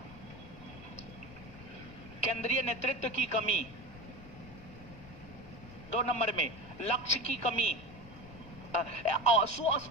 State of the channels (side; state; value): left; noise; rumble, 17 dB below the sound